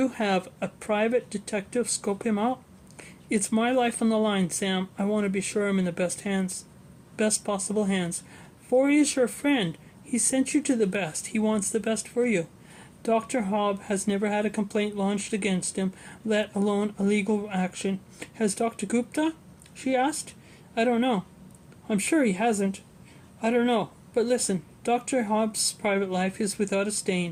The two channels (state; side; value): identical; both; correlation 1.00